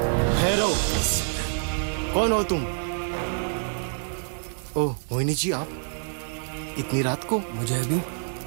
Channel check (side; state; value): left; silent; digital silence